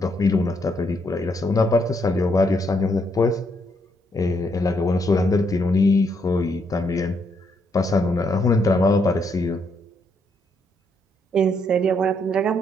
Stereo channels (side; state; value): both; normal; correlation 0.75